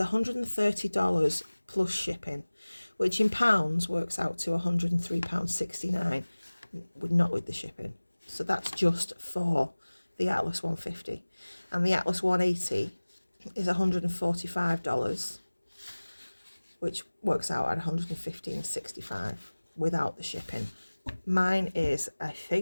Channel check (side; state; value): both; inverted; correlation -1.00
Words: plus shipping, which in pounds works out to £103.69, not with the shipping. So that's just for the Atlas 150. And the Atlas 180 is $145, which works out at $115.65 without the shipping. Mine is, I